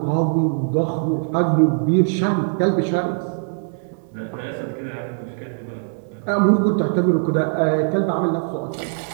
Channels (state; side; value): silent; left; 61 dB below the other